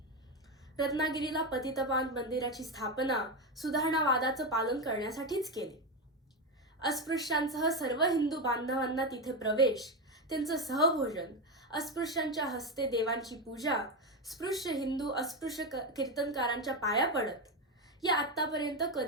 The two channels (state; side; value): normal; both; correlation 0.12